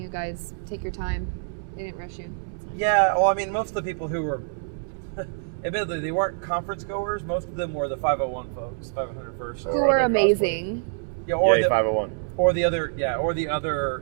you guys take your time. They didn't rush you. Yeah, well, I mean, most of the people who were, admittedly, they weren't conference goers. Most of them were the 501 folks, 500 first. Who were amazing. Yeah, or the 501. Or the other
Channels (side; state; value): left; silent; 61 dB below the other